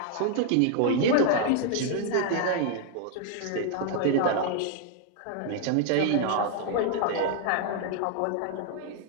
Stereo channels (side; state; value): both; different; correlation 0.00